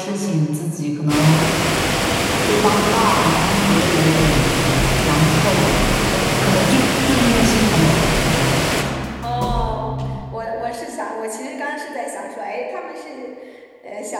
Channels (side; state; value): both; identical; correlation 1.00